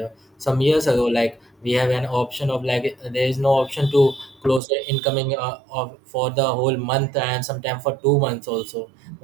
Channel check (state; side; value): drops out; left; at 4.6 s